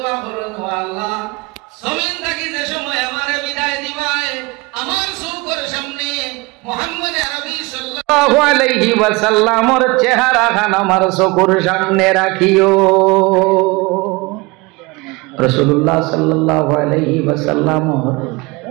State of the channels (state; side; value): quieter; left; 25.0 dB